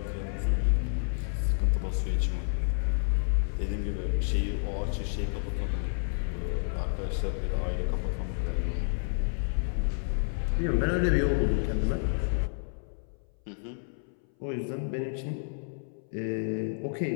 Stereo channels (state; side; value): silent; right; 58 dB below the other